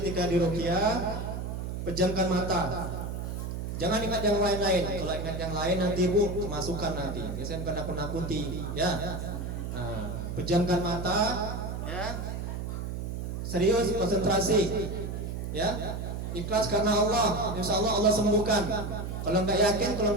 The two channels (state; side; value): noise; right; hum, 5 dB below the sound